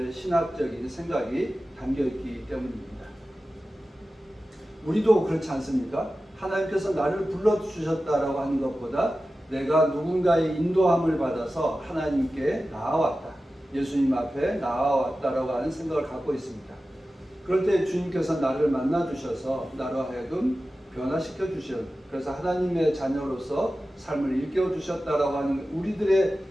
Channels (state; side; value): normal; both; correlation 0.94